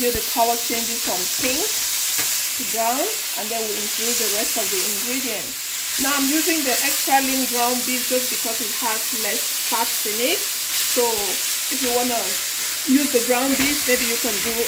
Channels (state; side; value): identical; both; correlation 1.00